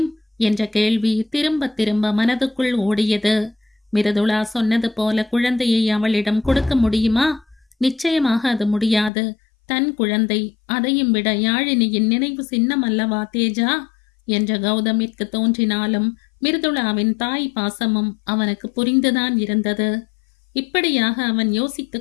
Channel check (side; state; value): right; drops out; at 9.1 s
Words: என்ற கேள்வி திரும்ப திரும்ப மனதுக்குள் ஓடியது. மிருதுளா சொன்னது போல குழந்தையை அவளிடம் கொடுக்க முடியுமா? நிச்சயமாக அது முடியாது. தன் குழந்தை, அதையும் விட யாழினியின் நினைவு சின்னம் அல்லவா தேஜா என்ற கௌதமிற்கு தோன்றினாலும் மிருதுளாவின் தாய் பாசமும் அவனுக்கு புரிந்துதான் இருந்தது. இப்படியாக அவன் யோசித்து